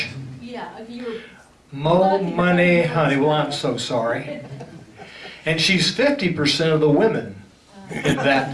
Yeah, if you were... Mo money, honey. Well, I'm so sorry. And she's 50% of the women in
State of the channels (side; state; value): both; identical; correlation 1.00